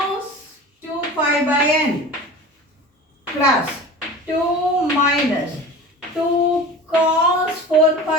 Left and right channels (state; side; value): normal; both; correlation 0.36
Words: 2 pi by n plus 2 minus 2 cos 4